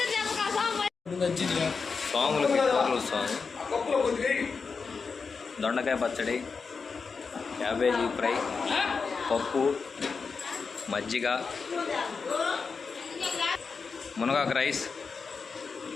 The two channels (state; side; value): quieter; right; 5.0 dB